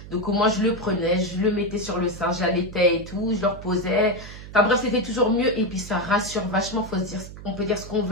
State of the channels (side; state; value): right; noise; hum, 14 dB below the sound